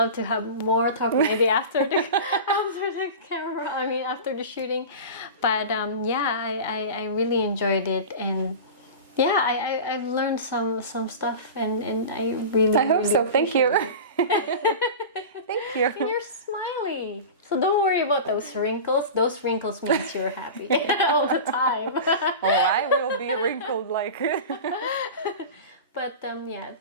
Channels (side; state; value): both; inverted; correlation -0.30